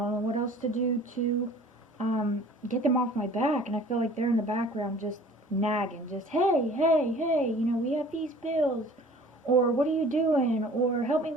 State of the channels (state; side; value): normal; both; correlation 0.48